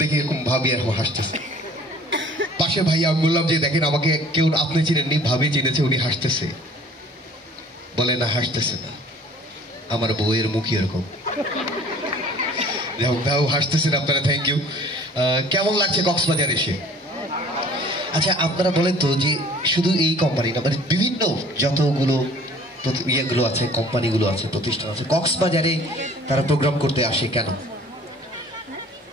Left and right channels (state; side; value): normal; both; correlation 0.50